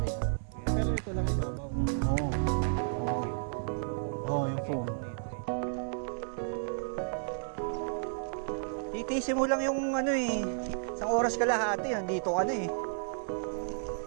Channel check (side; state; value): left; silent; digital silence